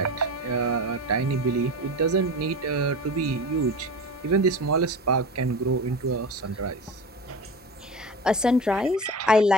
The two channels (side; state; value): both; normal; correlation 0.30